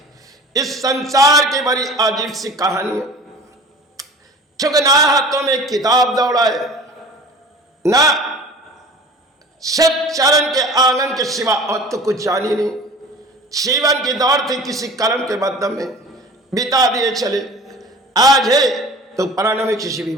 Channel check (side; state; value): both; normal; correlation 0.41